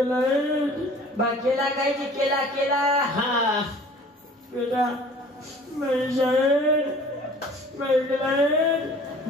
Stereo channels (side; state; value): both; normal; correlation 0.48